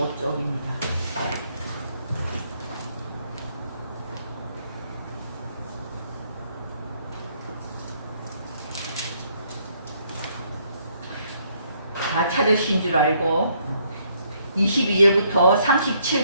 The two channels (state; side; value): inverted; both; correlation -0.69